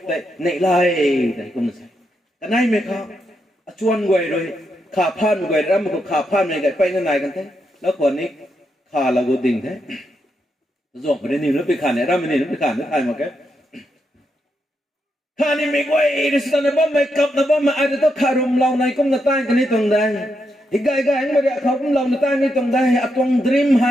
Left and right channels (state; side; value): normal; both; correlation 0.82